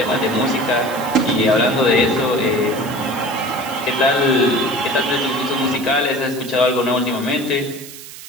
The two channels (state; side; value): noise; right; hiss, 15 dB below the sound